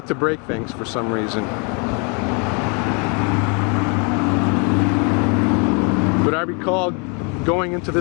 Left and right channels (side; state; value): right; quieter; 34.5 dB